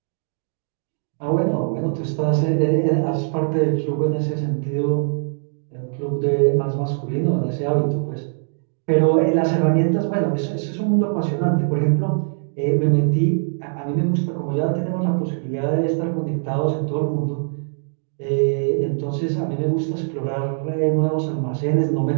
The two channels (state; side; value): silent; left; 64 dB below the other